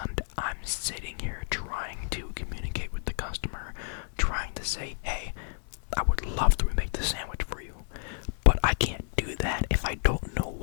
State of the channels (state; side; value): silent; right; digital silence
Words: I'm sitting here trying to communicate with the customer, trying to say, hey, I would love to remake the sandwich for you, but I can't do that if I don't know